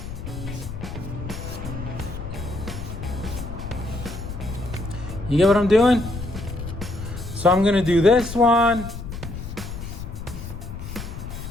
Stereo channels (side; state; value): left; noise; rumble, 9 dB below the sound